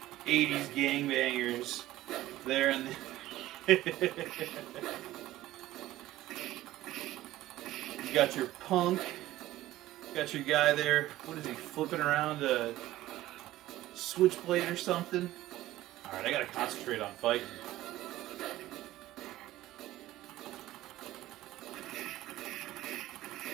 80s gangbangers there in the You got your punk, got your guy there, what is he, flipping around a switchblade or something? Alright, I gotta concentrate on fighting.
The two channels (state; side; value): quieter; left; 15.5 dB